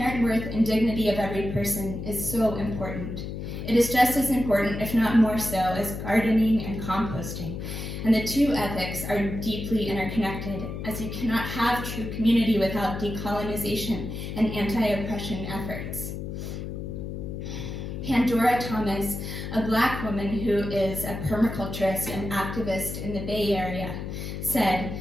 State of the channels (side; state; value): left; noise; hum, 6 dB below the sound